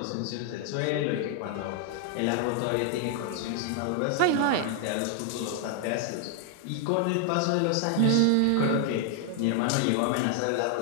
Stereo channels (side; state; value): both; different; correlation 0.00